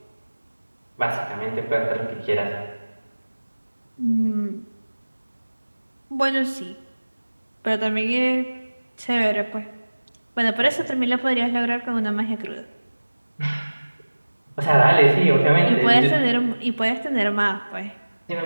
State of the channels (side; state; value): both; inverted; correlation -1.00